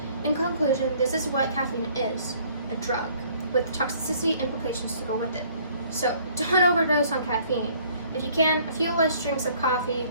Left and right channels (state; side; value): inverted; both; correlation -0.59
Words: In conclusion, this is what caffeine is, a drug, with toxicity implications to go with it. So don't overdose on caffeine. If you can, a few less drinks of coffee